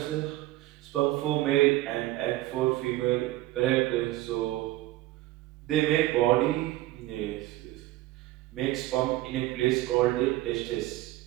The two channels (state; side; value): quieter; left; 16.8 dB